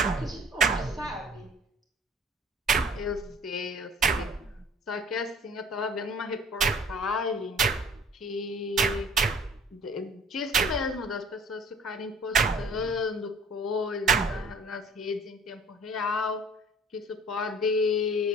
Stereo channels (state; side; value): normal; both; correlation 0.51